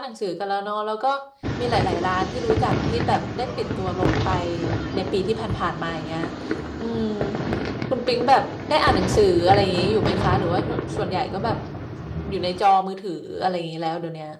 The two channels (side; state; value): both; identical; correlation 1.00